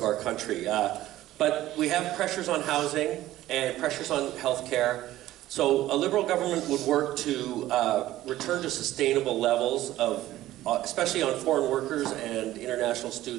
our country. But we have pressures on housing and pressures on healthcare. So a Liberal government would work to return to sustainable levels of, especially on foreign workers and international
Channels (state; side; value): quieter; left; 14.9 dB